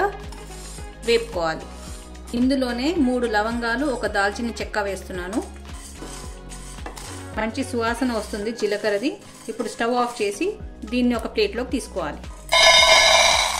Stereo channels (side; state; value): both; identical; correlation 1.00